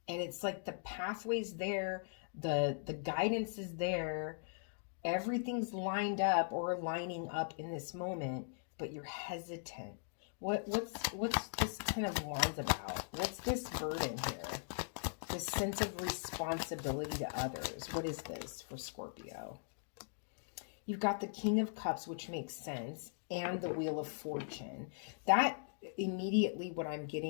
And it's like the pathway's there, the guidance is there, everything's lined up or lining up in this moment, but you're hesitant. What's this kind of Wands about? What's this burden here? This sense of responsibility to others. What is this for Scorpio? You've got the King of Cups, which makes sense, and the Wheel of Fortune. That immediately what I'm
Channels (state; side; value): silent; right; digital silence